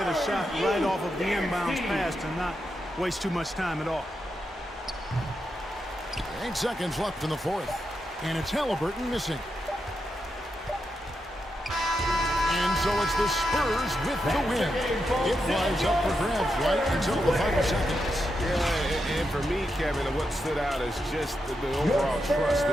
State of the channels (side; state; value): both; normal; correlation 0.85